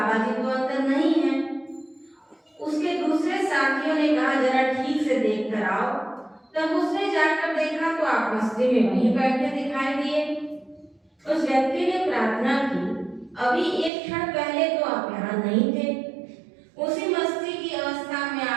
जी तो अंदर नहीं है। उसके दूसरे साथियों ने कहा जरा ठीक से देख कर आओ। तब उसने जाकर देखा तो आप मस्ती में वहीं बैठे दिखाई दिए। उस व्यक्ति ने प्रार्थना की, अभी एक क्षण पहले तो आप यहाँ नहीं थे। उसी मस्ती की अवस्था में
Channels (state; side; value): drops out; left; at 13.9 s